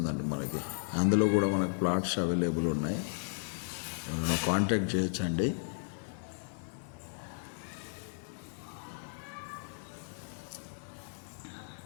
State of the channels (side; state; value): right; silent; digital silence